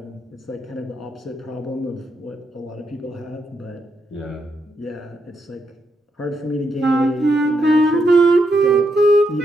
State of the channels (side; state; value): both; normal; correlation 0.80